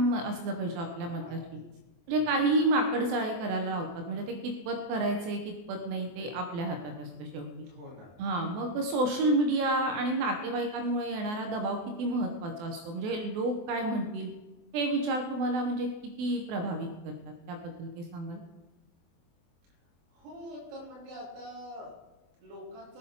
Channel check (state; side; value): late; left; 24 ms